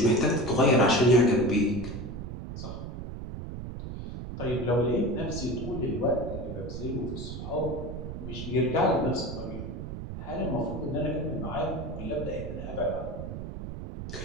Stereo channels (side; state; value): right; noise; rumble, 8 dB below the sound